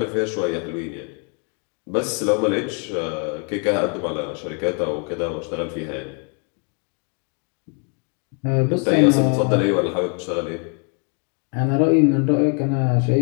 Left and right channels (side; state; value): right; quieter; 38.1 dB